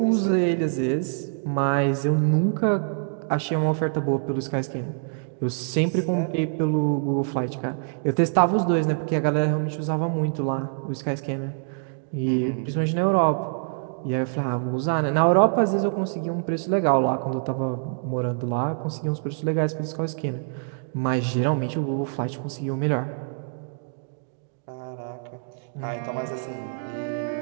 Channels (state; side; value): silent; left; 62 dB below the other